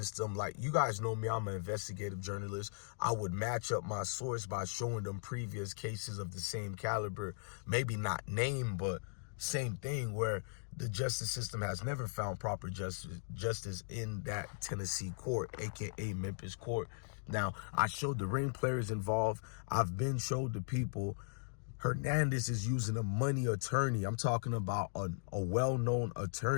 Like, you guys know me, I'm an investigative journalist. I would match up my source by showing them previous cases of the same caliber, maybe not name, but same thing, where the justice system has never found proper justice in that Tennessee court, aka Memphis court. Now, I showed the ring players involved. I've been showed the people. Hernandez is using a money attorney. I'm talking about a well-known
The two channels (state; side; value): silent; right; digital silence